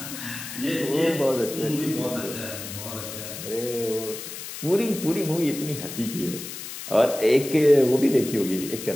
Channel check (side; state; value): left; noise; hiss, 10 dB below the sound